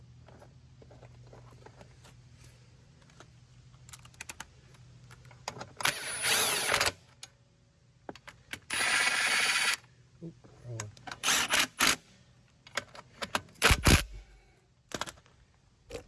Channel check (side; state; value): both; identical; correlation 1.00